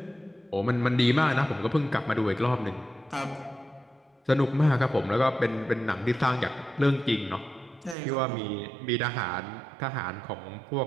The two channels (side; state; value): left; drops out; at 8.0 s